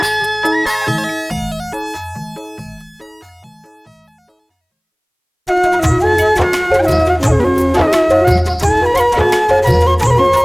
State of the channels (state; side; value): identical; both; correlation 1.00